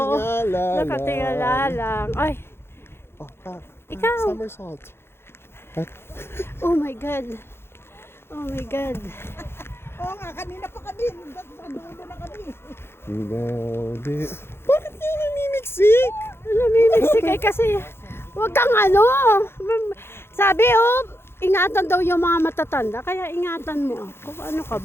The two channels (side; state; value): right; late; 0.12 ms